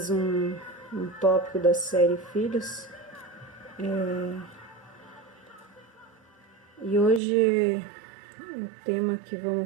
um tópico da série Filhos. E hoje o tema que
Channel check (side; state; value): left; drops out; at 7.2 s